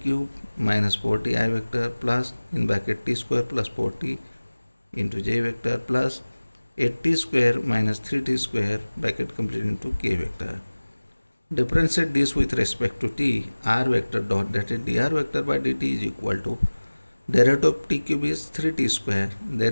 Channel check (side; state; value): both; inverted; correlation -1.00